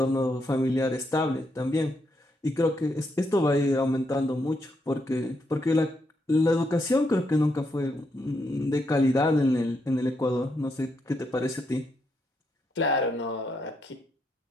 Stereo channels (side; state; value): both; normal; correlation 0.79